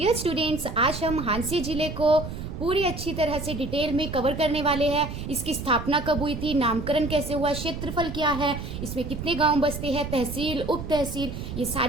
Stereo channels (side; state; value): right; noise; rumble, 7 dB below the sound